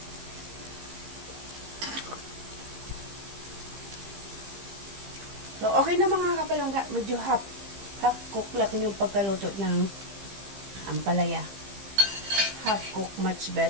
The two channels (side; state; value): left; late; 15 ms